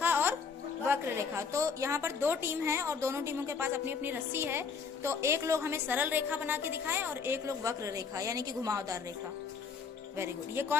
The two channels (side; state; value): right; quieter; 5.7 dB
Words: और वक्र रेखा। तो यहाँ पर दो टीम है और दोनों टीमों के पास अपनी अपनी रस्सी है। तो एक लोग हमें सरल रेखा बना के दिखाएं और एक लोग वक्र रेखा यानी कि घुमावदार रेखा। Very good. ये